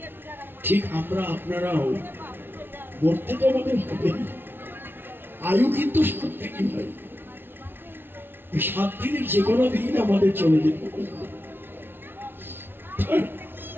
ঠিক আমরা আপনারাও মরতে তো আমাদের হবে না, আয়ু কিন্তু 7 দিনই হয়। এই 7 দিনের যে কোনো দিন আমাদের চলে যেতে হবে,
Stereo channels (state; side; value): late; left; 0.10 ms